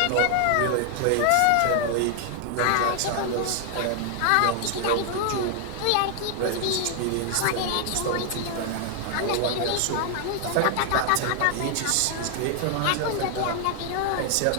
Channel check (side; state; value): both; different; correlation 0.00